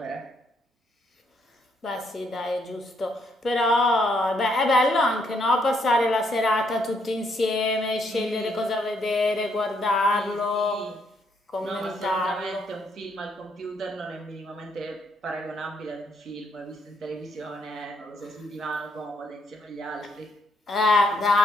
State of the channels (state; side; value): normal; both; correlation 0.73